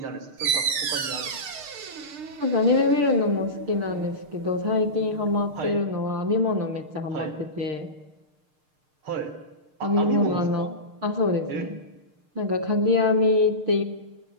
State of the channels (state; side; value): late; left; 6.6 ms